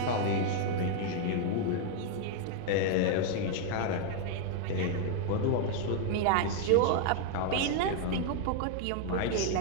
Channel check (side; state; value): both; different; correlation 0.00